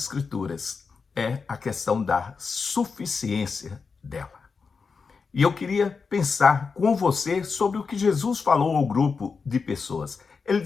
é a questão da suficiência dela. E eu queria pensar com você sobre o que Jesus falou ao grupo de pessoas. Ele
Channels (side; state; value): right; quieter; 5.1 dB